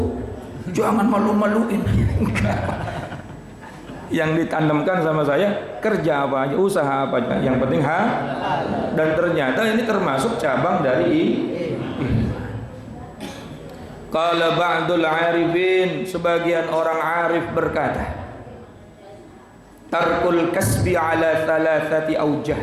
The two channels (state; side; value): identical; both; correlation 1.00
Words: jangan malu-maluin. Yang ditanamkan sama saya, kerja apa aja, usaha apa aja, yang penting dan ternyata ini termasuk cabang dari Qala ba'dul arifin, sebagian orang arif berkata, tarkul kasbi ala thalathati aujah,